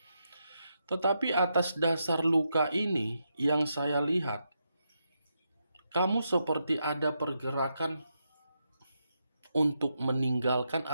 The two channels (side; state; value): both; inverted; correlation -0.83